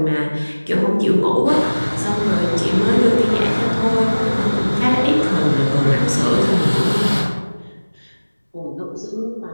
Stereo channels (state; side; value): inverted; both; correlation -1.00